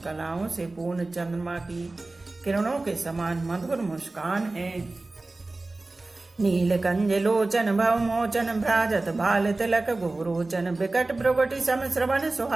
कलाओं से पूर्ण चंद्रमा की किरणों के समान मधुर मुस्कान है। नीलकंज लोचन भवमोचन भ्राजत बाल तिलक गोरोचन विकट भ्रुगुटि सम श्रवण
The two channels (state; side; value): quieter; left; 3.1 dB